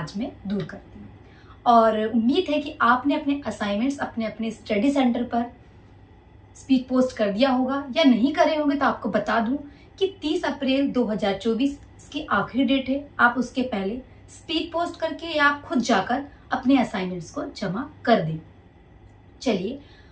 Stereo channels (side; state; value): both; identical; correlation 1.00